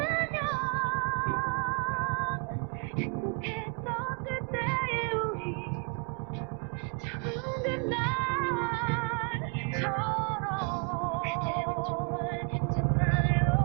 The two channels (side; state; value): left; quieter; 38.9 dB